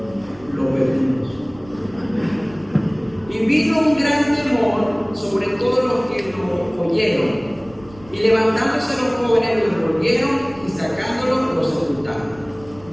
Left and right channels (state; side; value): noise; right; rumble, 23 dB below the sound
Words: Lo perdimos. Y vino un gran temor sobre todos los que lo oyeron. Y levantándose los jóvenes, lo envolvieron y sacándolo, lo sepultaron.